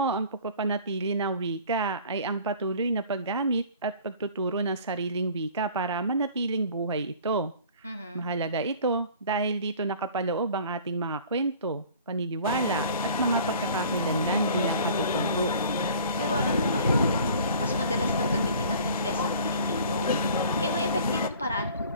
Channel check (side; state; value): both; inverted; correlation -0.48